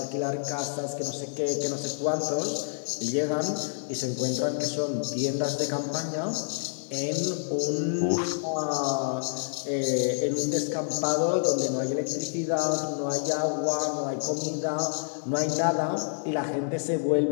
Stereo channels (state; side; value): silent; right; digital silence